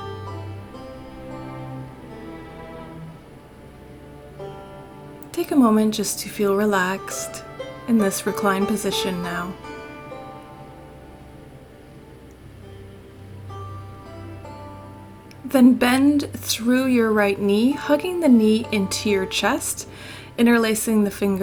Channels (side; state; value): both; identical; correlation 1.00